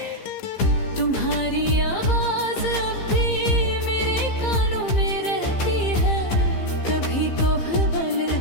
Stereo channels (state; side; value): late; right; 15 ms